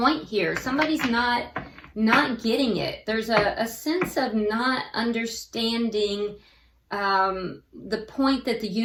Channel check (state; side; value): identical; both; correlation 1.00